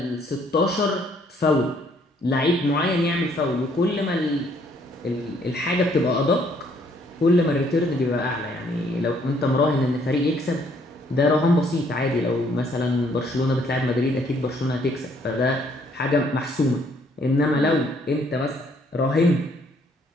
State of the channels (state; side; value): normal; both; correlation 0.66